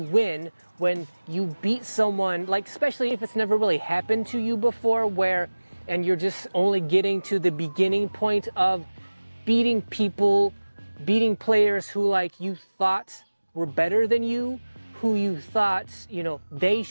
win, when you beat someone, like especially if it's never really happened to you before, and you're just only getting to the beginning point of beating people, beating players who like you thought were better than you, who you thought, they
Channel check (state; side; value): inverted; both; correlation -1.00